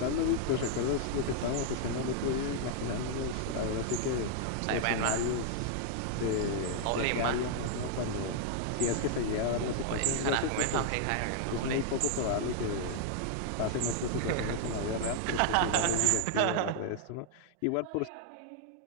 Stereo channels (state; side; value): different; both; correlation -0.01